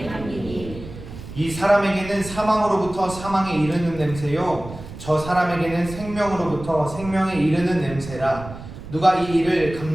향기니 이 사람에게는 사망으로부터 사망에 이르는 냄새요 저 사람에게는 생명으로부터 생명에 이르는 냄새라. 누가 이 일을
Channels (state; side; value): noise; right; rumble, 13 dB below the sound